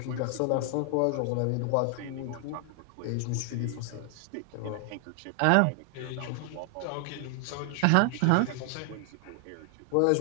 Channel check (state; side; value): different; both; correlation 0.00